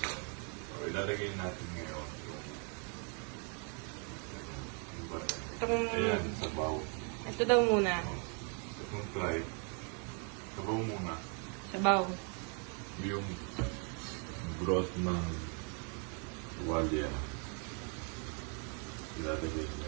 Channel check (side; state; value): left; quieter; 39.2 dB